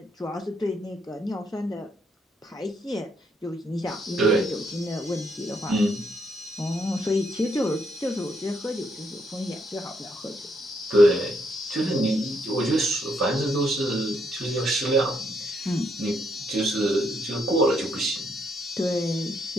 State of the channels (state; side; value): normal; both; correlation 0.75